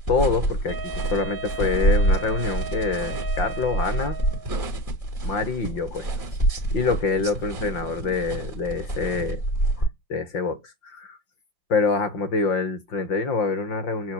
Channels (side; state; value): right; late; 5.8 ms